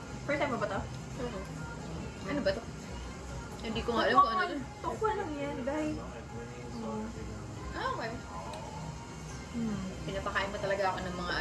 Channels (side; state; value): both; identical; correlation 1.00